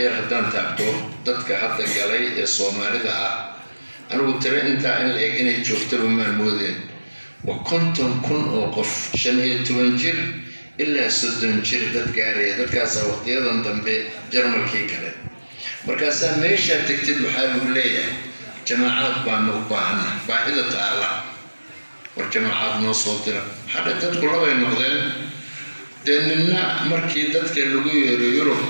yar haddaan taabto dadka hadda galay ee Soomaalida ah anigu tira intaa in la eg inay joogtaba maan moodeen. waa 50,000 oo qof 15 jir ilaa 30 jir dad gaaraya. dadkaasaa waqtiyadan dambe Jarmalkii gale. markaasaa meeshaa tagtid waxaa lagu leeyahay jamaacaad baanu u baahannahay. baahida taala war jamaacaad noo soo dira. hadda dadku labay noqdeen. dee nina markii dadka lagu yeero Yurub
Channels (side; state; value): both; inverted; correlation -1.00